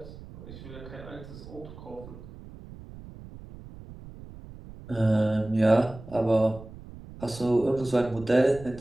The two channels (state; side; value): noise; right; rumble, 16 dB below the sound